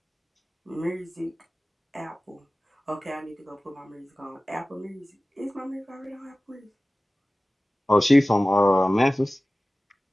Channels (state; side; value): normal; both; correlation 0.97